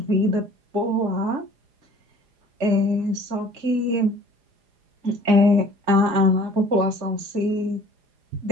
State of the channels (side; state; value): left; late; 4.9 ms